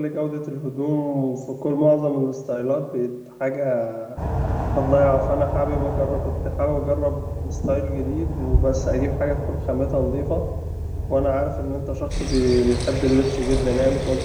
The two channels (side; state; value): both; identical; correlation 1.00